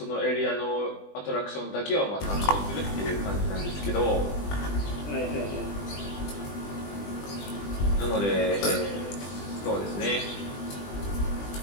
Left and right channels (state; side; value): late; right; 20 ms